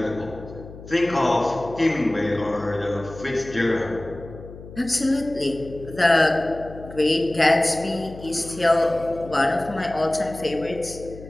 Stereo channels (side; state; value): left; noise; hum, 16 dB below the sound